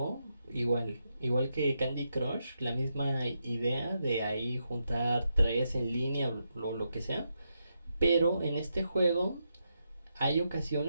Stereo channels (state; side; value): inverted; both; correlation -0.83